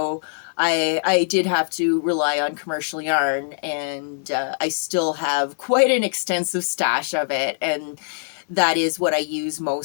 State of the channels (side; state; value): right; silent; digital silence